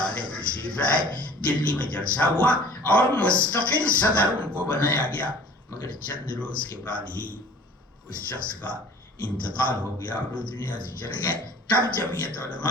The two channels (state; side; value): normal; both; correlation 0.48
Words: تشریف لائے، دلی میں جلسہ ہوا اور مستقل صدر ان کو بنایا گیا، مگر چند روز کے بعد ہی اس شخص کا انتقال ہو گیا اور وہ دنیا سے چلے گئے۔ تب جمعیت